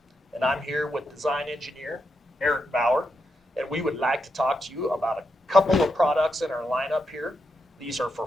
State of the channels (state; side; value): normal; both; correlation 0.84